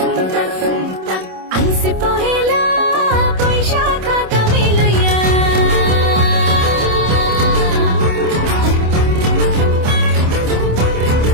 আইসে পহেলা বৈশাখ আগামী লইয়া,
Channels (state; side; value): late; left; 27 ms